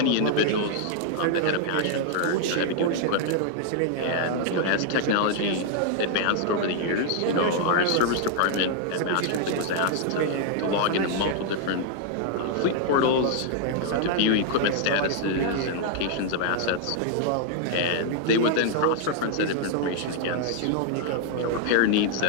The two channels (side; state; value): both; different; correlation 0.00